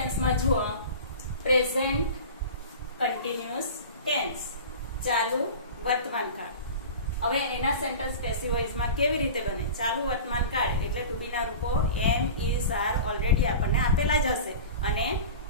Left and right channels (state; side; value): inverted; both; correlation -0.35